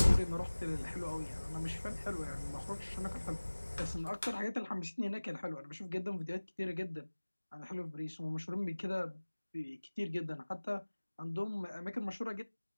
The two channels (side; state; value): both; inverted; correlation -1.00